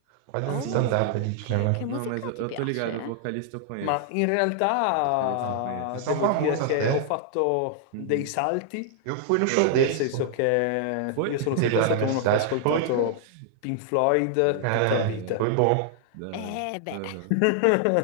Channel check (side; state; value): both; different; correlation 0.00